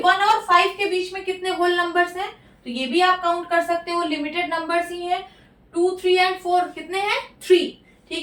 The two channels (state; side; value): identical; both; correlation 1.00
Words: और 5 के बीच में कितने होल नंबर्स हैं, तो ये भी आप काउंट कर सकते हो, लिमिटेड नंबर्स ही हैं। 2 3 एंड 4 कितने हैं? 3।